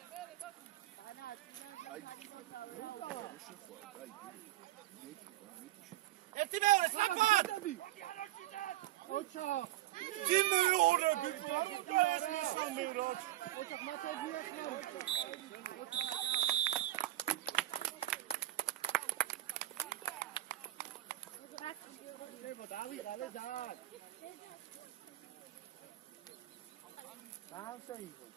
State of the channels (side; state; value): left; quieter; 15.3 dB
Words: ერთი მეორე სწრაფად! ოჩა Τι με ώρα που ოჩა მათე დავიღალე ძალიან. დაასაიდო,